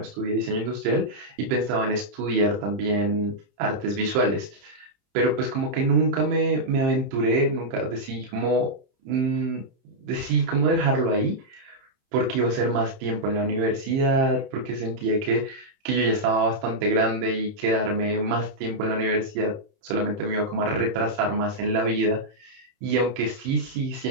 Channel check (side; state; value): left; late; 30 ms